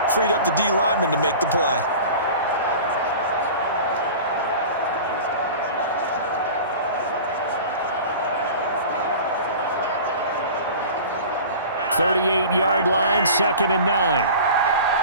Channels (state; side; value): inverted; both; correlation -0.38